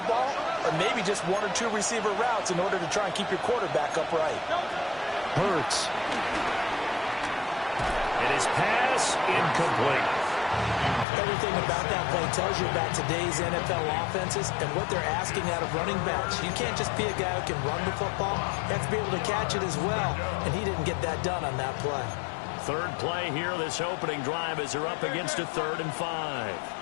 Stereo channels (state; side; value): drops out; right; at 11.1 s